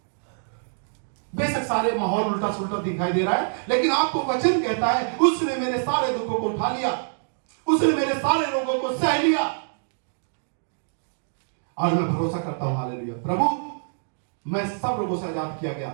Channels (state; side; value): silent; left; digital silence